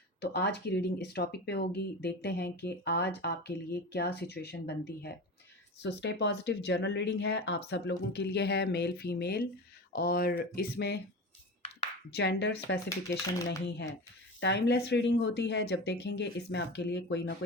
तो आज की रीडिंग इस टॉपिक पे होगी। देखते हैं कि आज आपके लिए क्या सिचुएशन बनती है। स्टे पॉजिटिव जनरल रीडिंग है, आप सब लोगों के लिए है, मेल फीमेल, और इसमें जेंडर स्पेसिफिकेशन नहीं है। टाइमलेस रीडिंग होती है। जब देखेंगे इसमें आपके लिए कोई ना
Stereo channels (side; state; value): both; normal; correlation 0.28